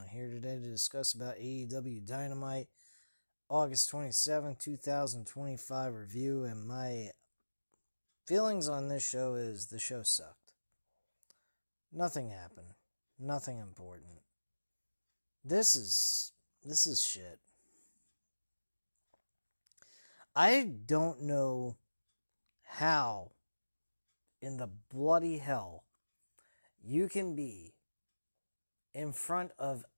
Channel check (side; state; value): both; inverted; correlation -1.00